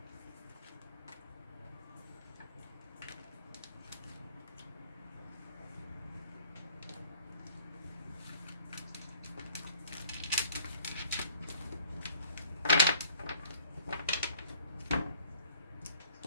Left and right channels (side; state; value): both; inverted; correlation -0.55